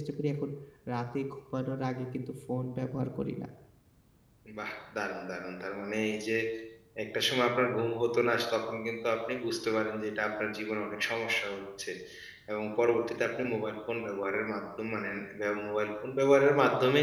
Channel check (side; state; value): both; identical; correlation 1.00